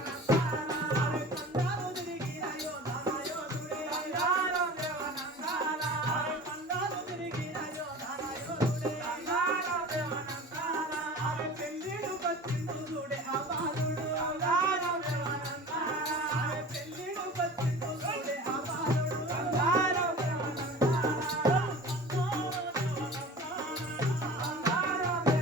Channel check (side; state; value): both; normal; correlation 0.38